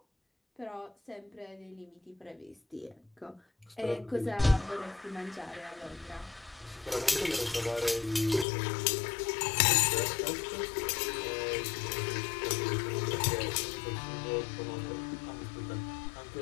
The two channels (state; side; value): drops out; right; at 8.5 s